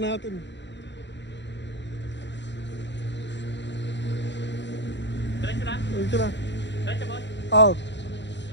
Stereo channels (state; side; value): late; right; 0.52 ms